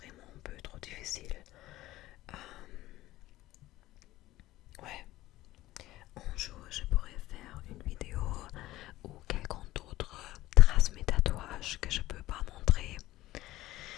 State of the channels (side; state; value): right; quieter; 16.4 dB